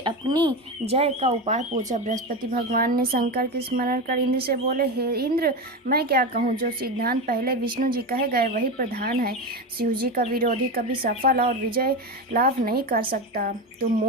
जय का उपाय पूछा। बृहस्पति भगवान ने शंकर के स्मरण कर इंद्र से बोले, हे इंद्र, मैं क्या कहूँ, जो सिद्धांत पहले विष्णु जी कहे गए वही प्रधान है। शिव जी का विरोधी कभी सफल और विजय लाभ नहीं कर सकता। तुम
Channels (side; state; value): both; normal; correlation 0.19